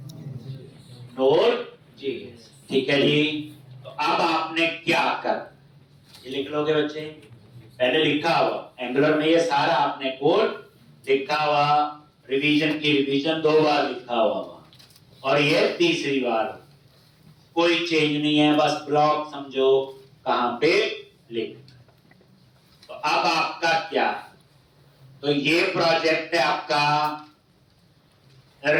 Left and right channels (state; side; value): identical; both; correlation 1.00